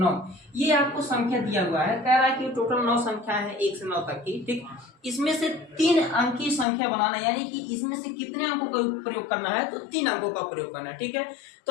ये आपको संख्या दिया हुआ है। कह रहा है कि टोटल 9 संख्या है 1 से 9 तक की। ठीक, इसमें से 3 अंक की संख्या बनाना, यानी कि इसमें से कितने अंकों का प्रयोग करना है? तो 3 अंकों का प्रयोग करना है। ठीक है,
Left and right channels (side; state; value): right; drops out; at 6.7 s